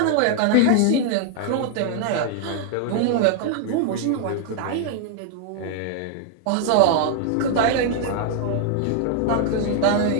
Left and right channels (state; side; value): different; both; correlation 0.00